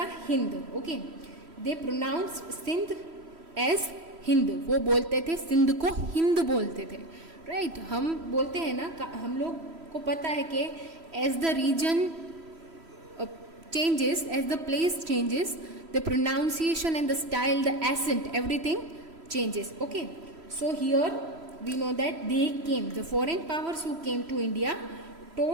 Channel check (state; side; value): late; left; 3.1 ms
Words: हिंद. ओके, दे प्रोनाउंस सिंध एज हिंद. वो बोलते थे सिंध को हिंद बोलते थे. राइट हम बोलते हैं ना, हम लोग को पता है कि as the region changes, as the place changes, the pronunciation and the style, the accent, everything changes. Okay, so here we know that they came, the foreign powers who came to India